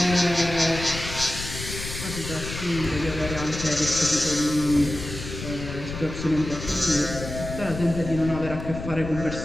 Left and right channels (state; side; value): noise; left; rumble, 8 dB below the sound